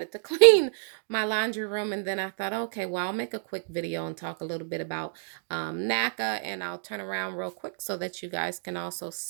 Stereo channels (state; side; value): silent; left; digital silence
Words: to clean my laundry room. And then I thought, okay, well, I'll make a quick video and talk a little bit about NACA, and I'll turn around real quick so that you guys can also